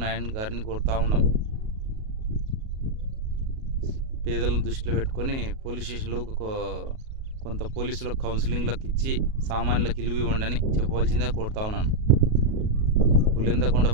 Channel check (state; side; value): late; left; 37 ms